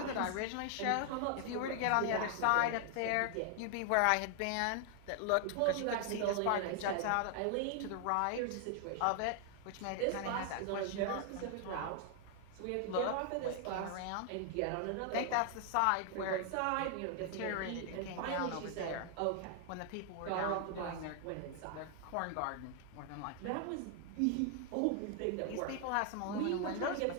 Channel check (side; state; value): both; different; correlation 0.00